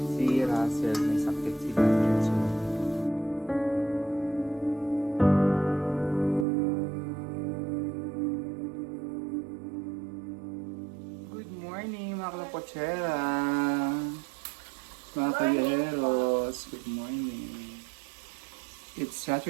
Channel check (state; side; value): drops out; left; at 6.5 s